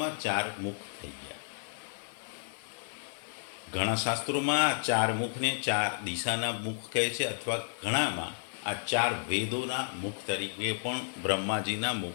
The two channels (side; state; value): right; silent; digital silence